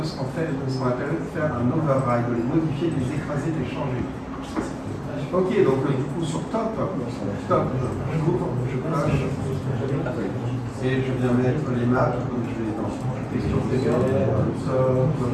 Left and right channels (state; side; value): identical; both; correlation 1.00